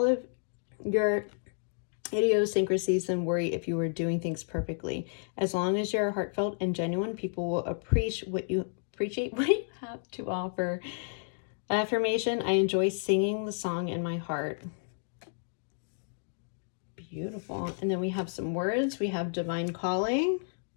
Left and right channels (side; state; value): right; silent; digital silence